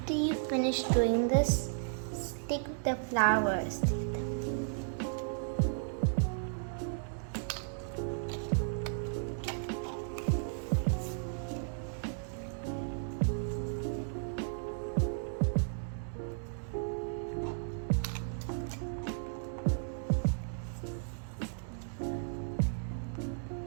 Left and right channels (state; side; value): silent; left; digital silence